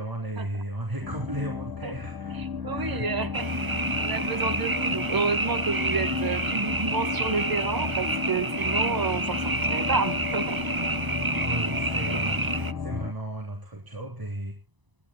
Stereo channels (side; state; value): left; late; 1.0 ms